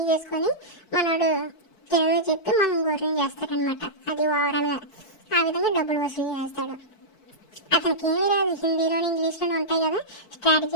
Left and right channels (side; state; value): right; late; 4.6 ms